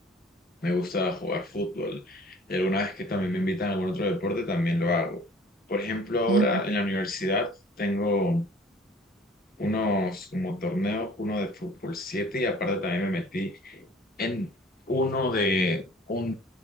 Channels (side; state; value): both; normal; correlation 0.50